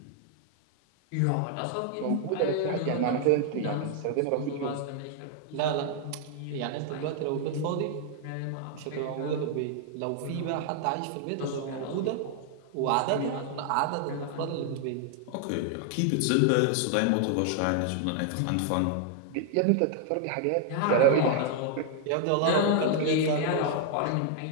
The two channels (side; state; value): both; different; correlation 0.00